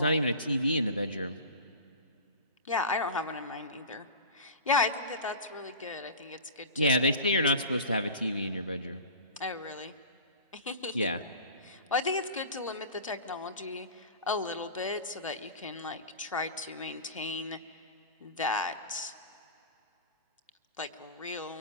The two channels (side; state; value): both; inverted; correlation -0.36